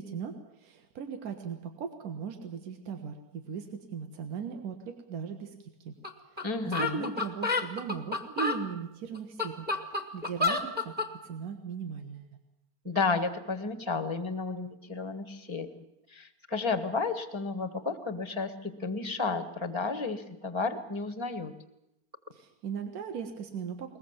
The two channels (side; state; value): left; late; 4.4 ms